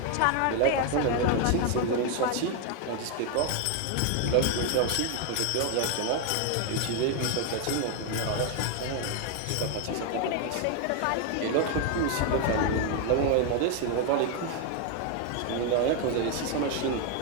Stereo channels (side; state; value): both; different; correlation 0.01